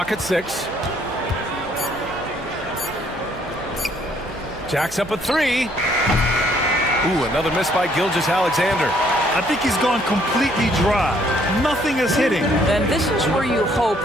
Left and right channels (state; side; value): noise; right; hum, 18 dB below the sound